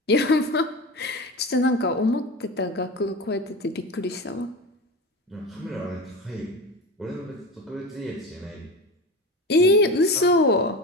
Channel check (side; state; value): both; normal; correlation 0.27